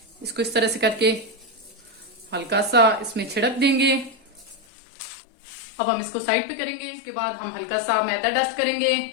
इसको इस तरह से करके हल्का सा इसमें छिड़क देंगे। अब हम इसको साइड पे करेंगे। इसके बाद हम हल्का सा मैदा डस्ट करेंगे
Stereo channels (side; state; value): right; drops out; at 4.6 s